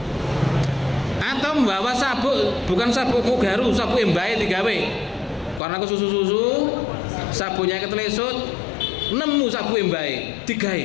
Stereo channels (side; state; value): right; drops out; at 5.6 s